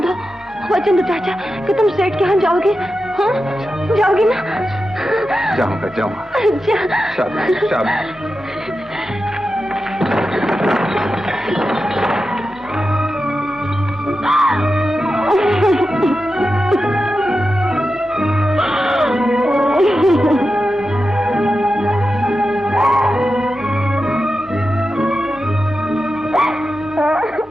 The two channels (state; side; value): normal; both; correlation 0.91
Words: चाचा कि तुम सेठ के यहाँ जाओगे। हाँ जाओगे ना? जाऊंगा जाऊंगा। शाबाश शाबाश।